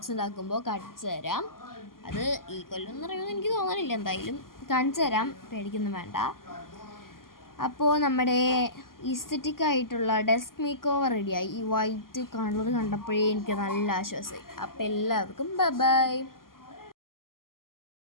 ഉണ്ടാക്കുമ്പോൾ കാണിച്ചു തരാം. അത് ഈ കൊല്ലം നിറയുമെന്ന് എനിക്ക് തോന്നണില്ല, എന്തായാലും കാണിച്ചു തരാം, പേടിക്കൊന്നും വേണ്ട. അപ്പോൾ നമ്മുടെ ഈസ്തറ്റിക് ആയിട്ടുള്ള ഡെസ്ക് മേക്ക് ഓവർ റെഡിയായി. ഈ വൈറ്റ് കളർ കണ്ടപ്പോഴേ എനിക്ക് നല്ല ആശ്വാസമായി. അപ്പോൾ എല്ലാവർക്കും ബൈ ബൈ.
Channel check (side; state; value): right; late; 0.91 ms